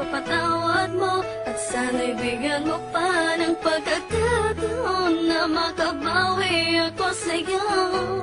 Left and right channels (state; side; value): identical; both; correlation 1.00